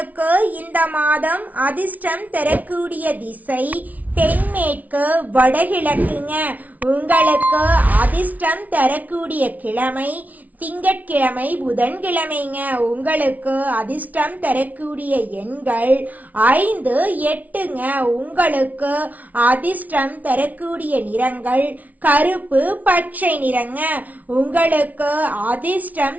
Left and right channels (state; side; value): late; left; 0.073 ms